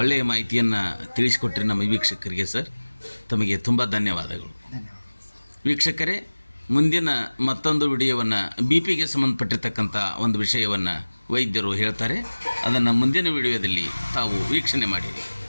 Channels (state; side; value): inverted; both; correlation -1.00